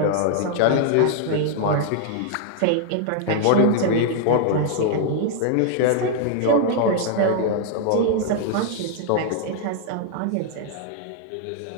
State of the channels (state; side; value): different; both; correlation 0.00